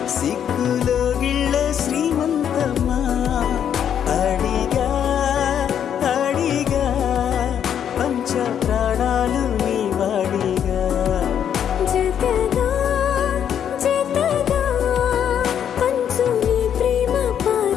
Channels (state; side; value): quieter; right; 9.0 dB